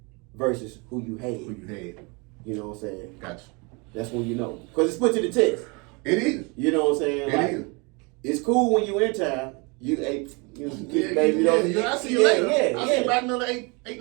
versus who you had. Who you had. You know what I'm saying? Gotcha. That's when you know, because it's put to the test. It is. You know what I'm saying? It is. It's cool when you in town. You baby. I see you later. Yeah. I see you about another 8-9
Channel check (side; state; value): left; quieter; 29.6 dB